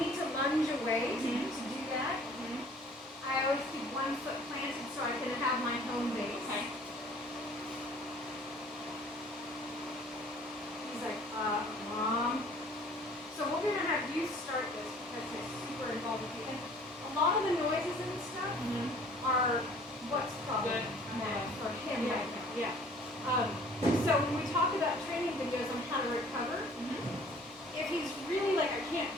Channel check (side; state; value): both; normal; correlation 0.53